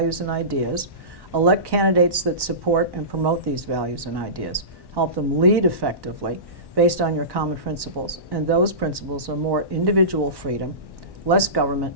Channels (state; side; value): late; left; 1.1 ms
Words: and ideas, elect candidates that support and promote these values and ideas, help them lead effectively based on your common principles. And those principles are more individual freedom, less government